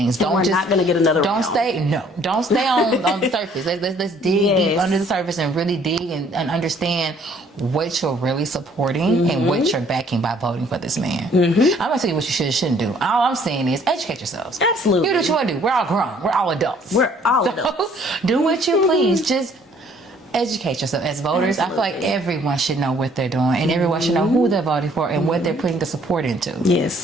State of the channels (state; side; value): normal; both; correlation 0.60